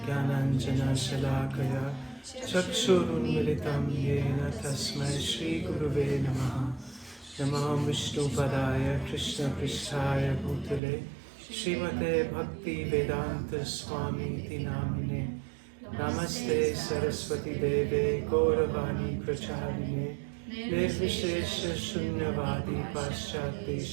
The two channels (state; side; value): drops out; left; at 10.8 s